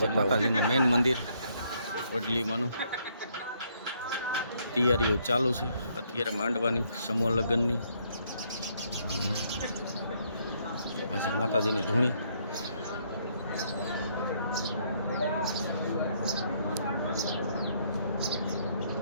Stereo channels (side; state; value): both; inverted; correlation -0.70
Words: માતાજીનું મેન મંદિર વડલીમાંનું. તૈયારીઓ ચાલુ છે અત્યારે માંડવાની, સમૂહ લગ્નની. આ છે માતાજીની ધૂણી.